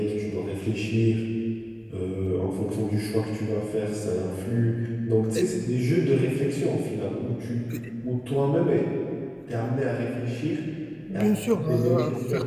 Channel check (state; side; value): identical; both; correlation 1.00